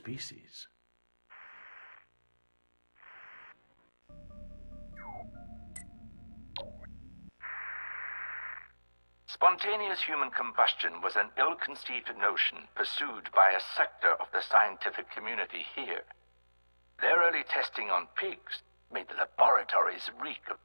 Spontaneous human combustion was an ill-conceived notion pursued by a sector of the scientific community here. Their early testing on pigs made the laboratories reek of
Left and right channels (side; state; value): both; inverted; correlation -1.00